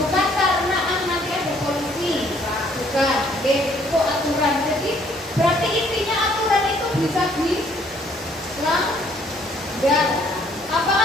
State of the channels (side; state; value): both; normal; correlation 0.63